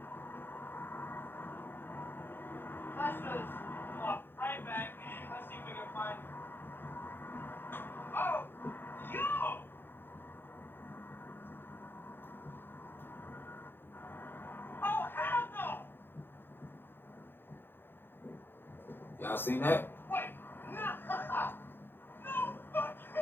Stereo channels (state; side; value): late; right; 0.10 ms